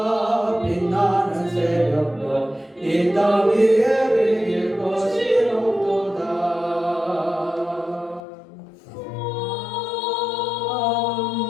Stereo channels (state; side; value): drops out; right; at 8.2 s